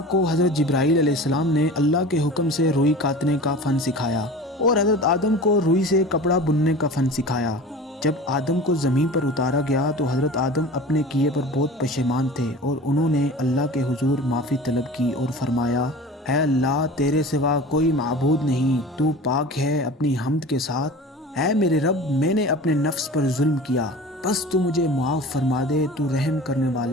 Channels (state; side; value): normal; both; correlation 0.37